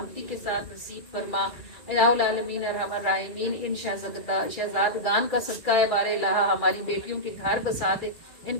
کے ساتھ نصیب فرما، الہ العالمین ارحم الراحمین ان شہزادگان کا صدقہ ہے، بار الہ ہماری بیٹیوں کے گھر بسا دے، ان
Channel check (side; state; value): right; late; 2.4 ms